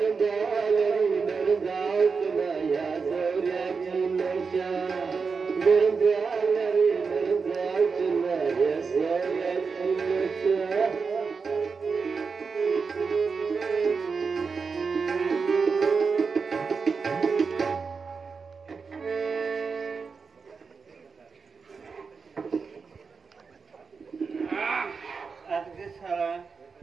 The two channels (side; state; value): left; quieter; 5.1 dB